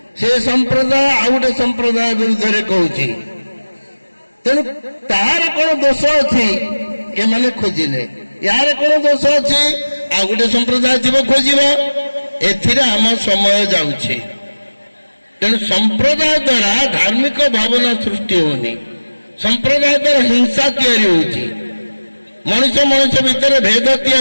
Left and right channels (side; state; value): both; inverted; correlation -1.00